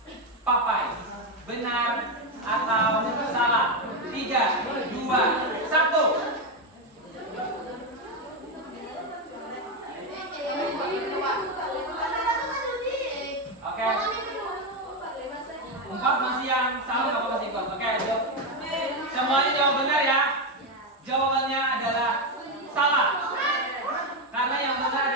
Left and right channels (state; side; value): normal; both; correlation 0.08